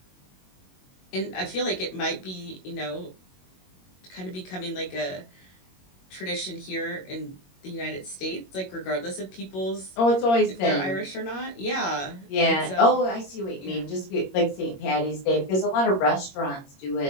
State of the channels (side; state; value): right; late; 22 ms